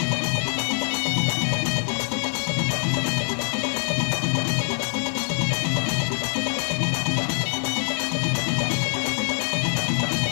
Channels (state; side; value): silent; right; 55 dB below the other